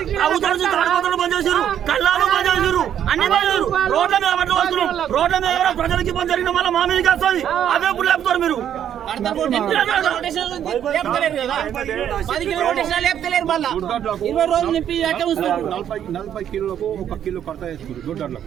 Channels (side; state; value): left; quieter; 9.8 dB